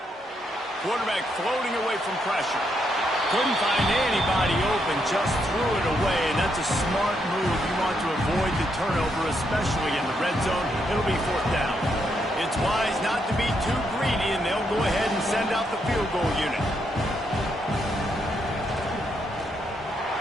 Quarterback floating away from pressure. Couldn't find anybody open, just threw it away, and that's a smart move. You want to avoid the turnover, especially in the red zone. It'll be 4th down. It's wise not to be too greedy, and they'll go ahead and send out the field goal unit.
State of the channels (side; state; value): both; normal; correlation 0.78